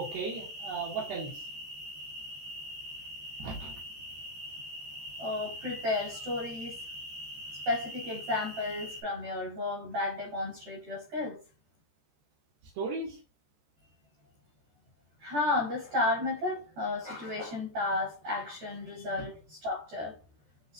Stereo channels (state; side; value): late; left; 14 ms